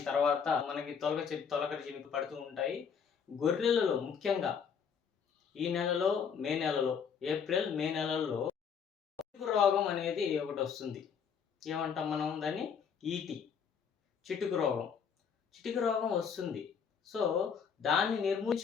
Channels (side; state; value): right; quieter; 6.9 dB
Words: తర్వాత మనకి తొలకరి చినుకులు పడుతూ ఉంటాయి. గొర్రెలలో ముఖ్యంగా ఈ నెలలో, మే నెలలో, ఏప్రిల్, మే నెలల్లో చిటుకు రోగం అనేది ఒకటొస్తుంది. ఏమంటాం మనం దాన్ని? ఈటి. చిటుకు రోగం. చిటుకు రోగం వస్తుంది. సో, దాన్ని